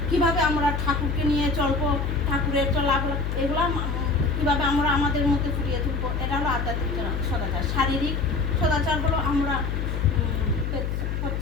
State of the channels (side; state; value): left; noise; hum, 2 dB below the sound